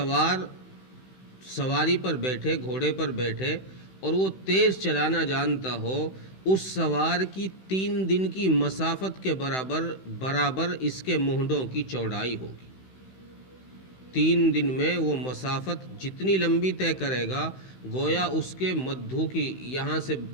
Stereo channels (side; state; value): right; late; 16 ms